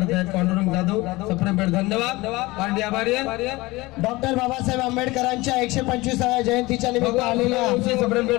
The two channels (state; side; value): quieter; right; 21.2 dB